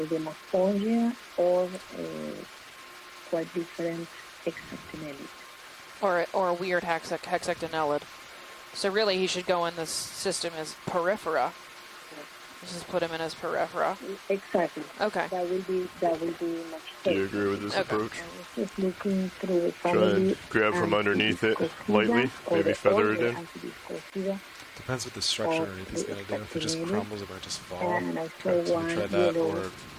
demospongia or a quite different hexactinellid. Or a weird hexactinellid. So really, he should go in this system as peripheral. Just put him in as peripheral. Exactly. Okay. That will be much Do you safer. agree with this Okay. approach? I was just looking through the Try family. and grab from underneath it Antiviscosida lightly, or maybe the feather it older in. Antiviscosida. Depends what the structure Or underneath is the going to do. If it just Stetsonini. crumbles, it might just fall. And I saw So we one try that, yellow, or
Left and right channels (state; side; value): identical; both; correlation 1.00